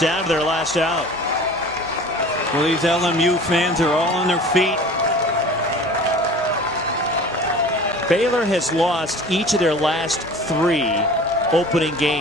to their last out. Well, these LMU fans are all on their feet. Baylor has lost each of their last 3 opening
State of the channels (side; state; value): both; normal; correlation 0.42